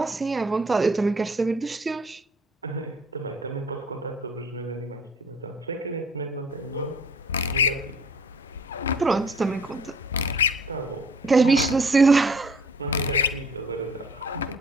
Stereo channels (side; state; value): both; normal; correlation 0.53